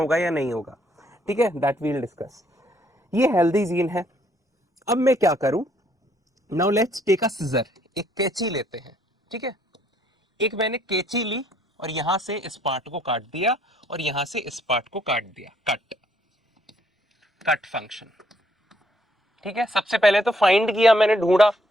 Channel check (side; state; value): both; normal; correlation 0.67